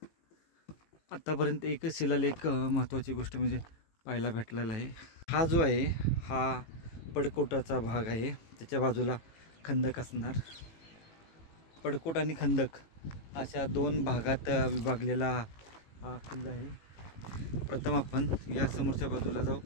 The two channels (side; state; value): right; late; 18 ms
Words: आतापर्यंत एकच शिलालेख महत्त्वाची गोष्ट म्हणजे पाहायला भेटलेला आहे. हा जो आहे हा पडकोटाचा भाग आहे. त्याच्या बाजूला खंदक असणार. पडकोट आणि खंदक अशा 2 भागात विभागलेला हा किल्ला आहे. प्रथम आपण या समोरच्या बाजूला जाऊ